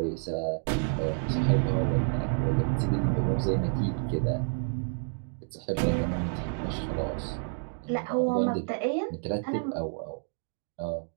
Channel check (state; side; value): silent; left; 58 dB below the other